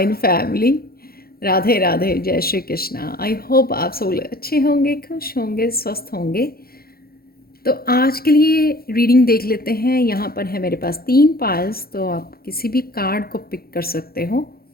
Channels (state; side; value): late; right; 0.44 ms